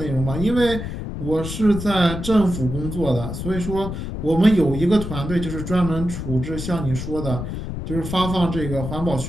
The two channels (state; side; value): noise; left; rumble, 6 dB below the sound